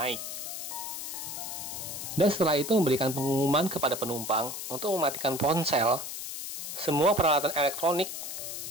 Dan setelah itu memberikan pengumuman kepada penumpang untuk mematikan ponsel, semua peralatan elektronik,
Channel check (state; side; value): noise; left; hiss, 7 dB below the sound